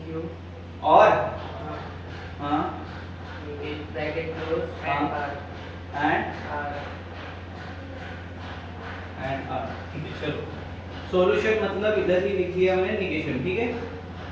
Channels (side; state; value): left; noise; rumble, 30 dB below the sound